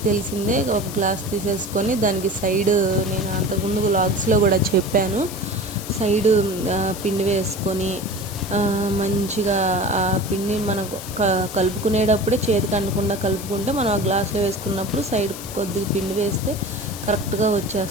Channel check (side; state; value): left; noise; hiss, 12 dB below the sound